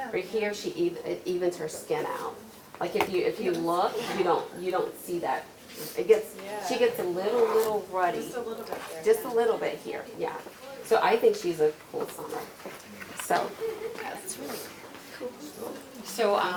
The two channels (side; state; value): both; identical; correlation 1.00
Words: Right here, it evens her skin out. Like if you look, you don't see that. She gets a little ruddy. Just a little bit there. Just a little bit here, yeah. So I think she's a cool summer. So. That's really So,